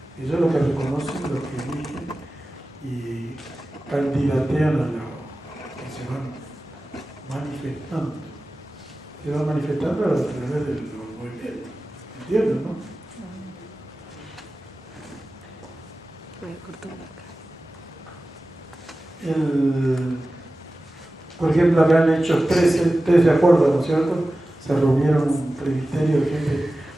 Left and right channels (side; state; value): both; normal; correlation 0.95